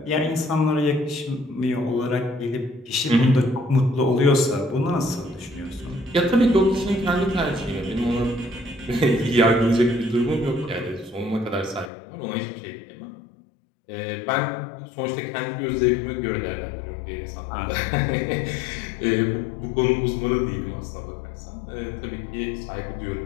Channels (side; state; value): right; drops out; at 11.9 s